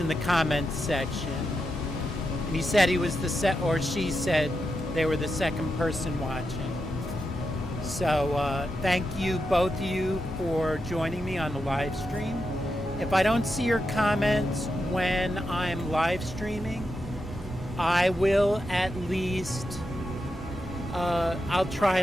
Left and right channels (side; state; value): both; normal; correlation 0.87